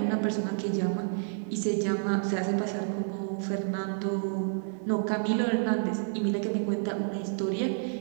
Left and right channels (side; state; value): left; silent; digital silence